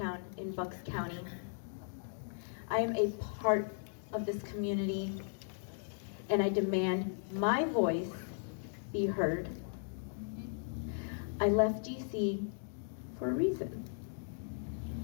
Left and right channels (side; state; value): right; silent; digital silence